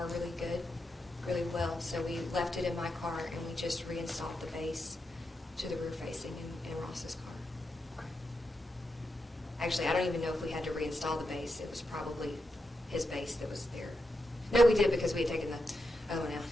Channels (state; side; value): normal; both; correlation 0.86